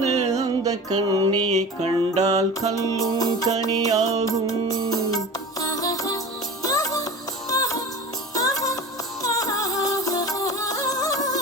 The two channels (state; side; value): normal; both; correlation 0.34